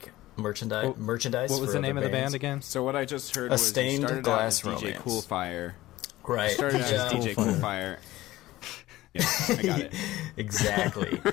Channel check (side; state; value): right; quieter; 16.9 dB